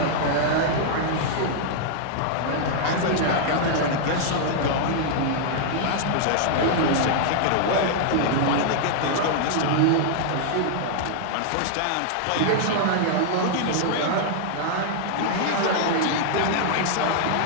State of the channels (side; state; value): both; different; correlation -0.01